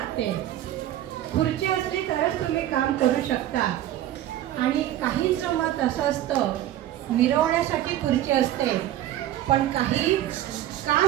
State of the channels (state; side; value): quieter; left; 12.9 dB